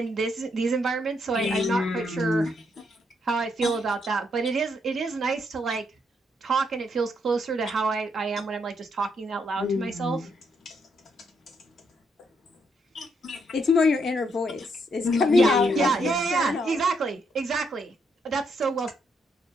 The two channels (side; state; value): both; normal; correlation 0.76